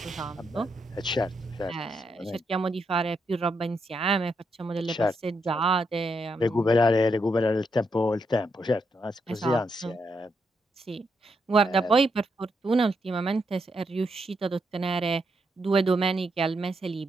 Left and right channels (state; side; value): normal; both; correlation 0.80